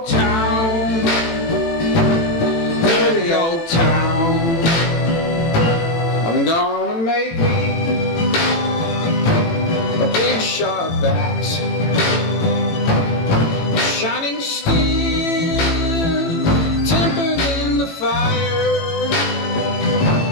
town, dirty old town. I'm gonna make me a big sharp axe, shining steel, tempered in the fire.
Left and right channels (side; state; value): right; late; 18 ms